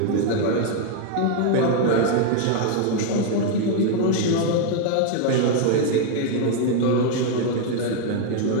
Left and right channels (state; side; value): different; both; correlation 0.00